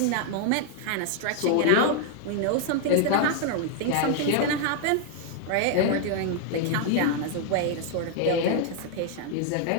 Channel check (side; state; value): both; different; correlation 0.00